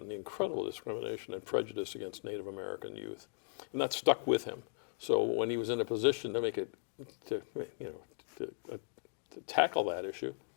the incredible discrimination and prejudice against Native American youth, and that stuck with him. So when he was in a position to make it, to tackle that issue,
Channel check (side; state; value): right; silent; digital silence